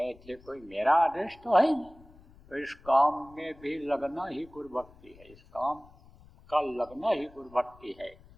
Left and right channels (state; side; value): noise; left; rumble, 24 dB below the sound